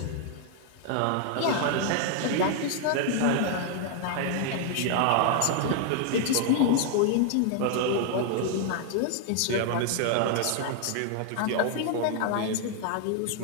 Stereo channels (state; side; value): different; both; correlation 0.00